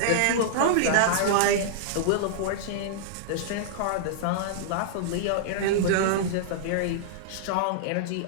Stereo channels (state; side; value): different; both; correlation -0.02